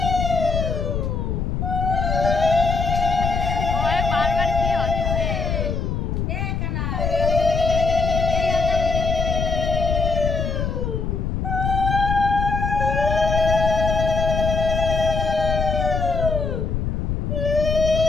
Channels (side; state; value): left; noise; rumble, 1 dB below the sound